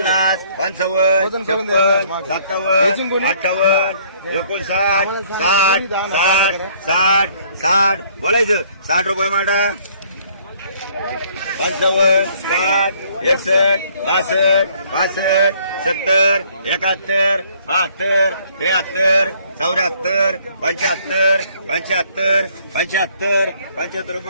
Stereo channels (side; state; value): both; inverted; correlation -0.61